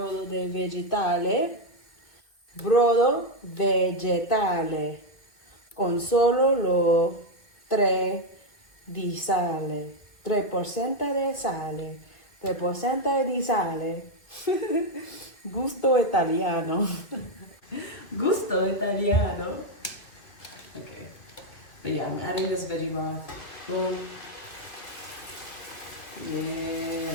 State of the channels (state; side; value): late; right; 2.0 ms